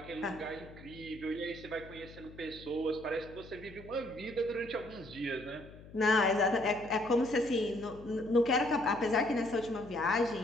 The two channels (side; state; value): left; noise; hum, 18 dB below the sound